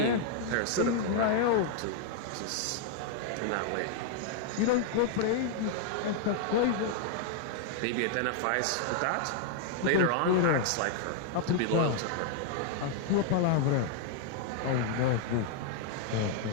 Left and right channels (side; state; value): both; different; correlation 0.00